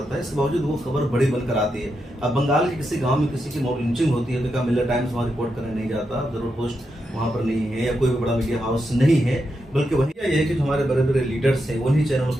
है। इसके बावजूद वो खबर बड़ी बनकर आती है। अब बंगाल के किसी गांव में किसी की मॉब लिंचिंग होती है तो क्या मिलर टाइम्स वहाँ रिपोर्ट करने नहीं जाता, जरूर पोस्ट वहाँ पर नहीं है या कोई भी बड़ा मीडिया हाउस नहीं है, बल्कि वही ये है कि जो हमारे बड़े बड़े लीडर्स हैं उन्हीं चैनलों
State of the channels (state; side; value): normal; both; correlation 0.85